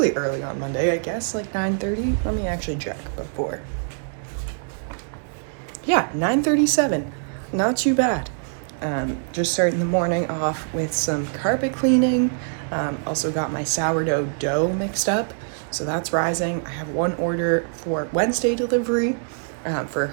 early on Monday, I guess, like 9:30. Let me actually check before. Yeah, 9:37. Not too bad. Just starting the morning off with some carpet cleaning. Also got my sourdough dough mixed up, so that's rising. I have one order for Wednesday delivery for a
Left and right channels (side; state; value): left; silent; digital silence